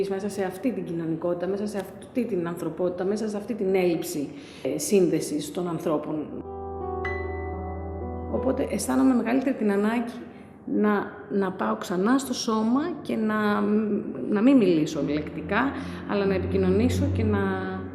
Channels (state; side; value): identical; both; correlation 1.00